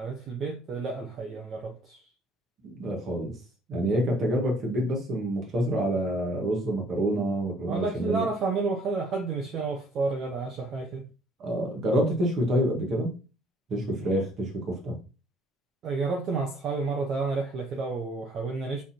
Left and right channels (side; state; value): both; normal; correlation 0.61